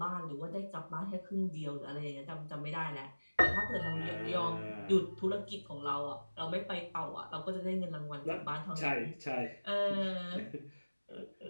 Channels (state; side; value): inverted; both; correlation -1.00